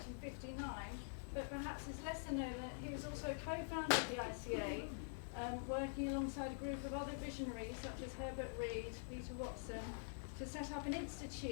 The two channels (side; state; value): right; silent; digital silence